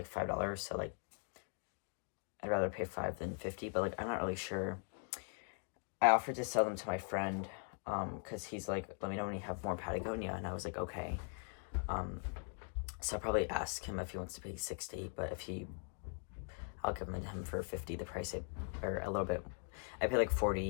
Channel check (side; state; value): right; silent; 51 dB below the other